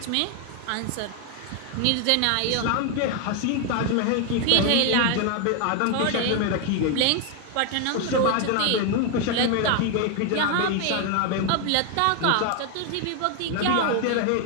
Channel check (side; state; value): both; different; correlation 0.01